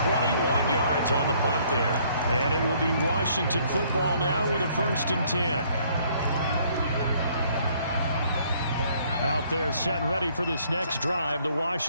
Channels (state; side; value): inverted; both; correlation -0.63